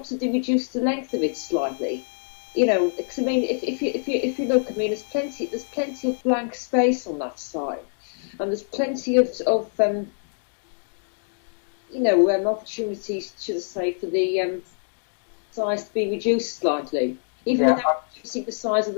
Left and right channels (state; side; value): silent; right; digital silence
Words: the length of it slightly. Because I mean, if you look, I mean, there's plenty of blank space on that side, and there's plenty of opportunities, should I say, for the size to be reduced slightly, even without reducing the size of